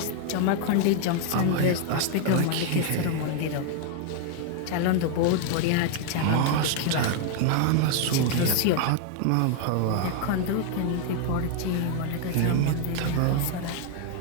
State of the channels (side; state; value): both; different; correlation 0.00